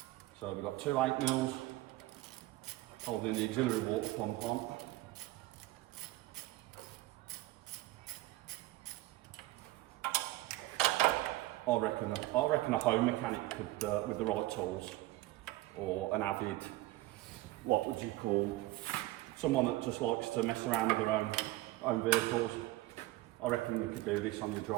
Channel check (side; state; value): left; quieter; 18.0 dB